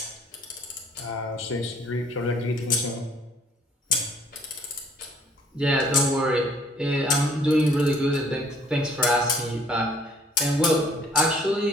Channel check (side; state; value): both; normal; correlation 0.59